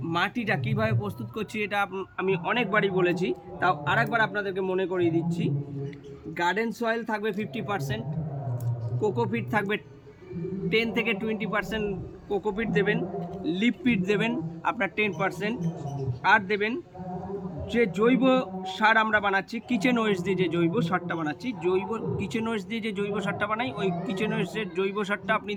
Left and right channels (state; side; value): identical; both; correlation 1.00